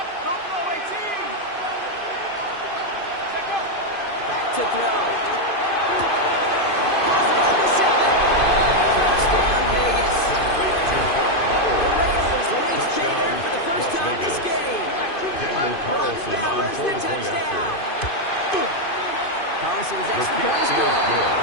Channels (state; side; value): late; right; 2.5 ms